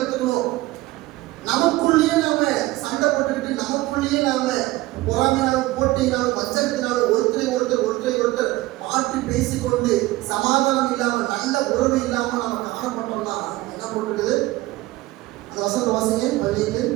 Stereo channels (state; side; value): quieter; left; 18.7 dB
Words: கத்துக்கணும். நமக்குள்ளேயே நாம சண்டை போட்டுக்கிட்டு நமக்குள்ளேயே நாம பொறாமையினாலும் போட்டியினாலும் வச்சத்தினாலும் ஒருத்தரை ஒருத்தர் மாற்றி பேசிக்கொண்டு சமாதானம் இல்லாம நல்ல உறவு இல்லாம நாம காணப்பட்டோம்னா என்ன போட்டுருக்குது? அந்த வசனத்தை வாசிங்க பள்ளிக்கு.